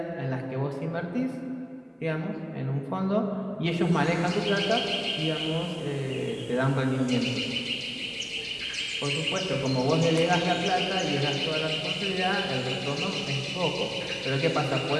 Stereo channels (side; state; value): both; identical; correlation 1.00